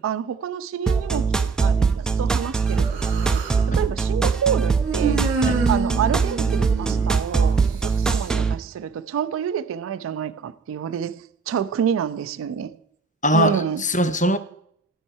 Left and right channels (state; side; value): quieter; left; 4.5 dB